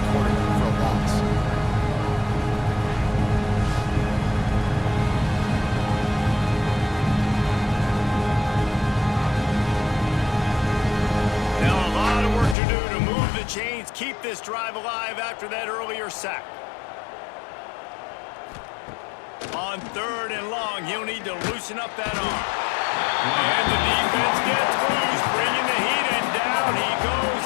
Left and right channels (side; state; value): right; drops out; at 12.6 s